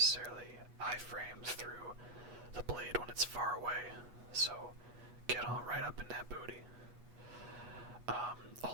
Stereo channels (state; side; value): late; left; 8.2 ms